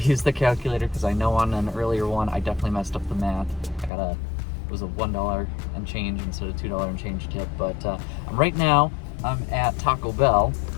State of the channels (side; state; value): right; drops out; at 3.9 s